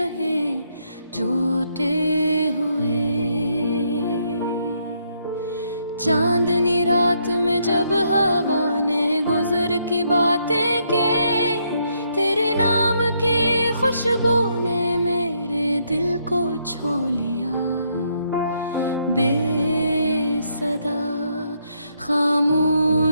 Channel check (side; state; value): both; inverted; correlation -0.74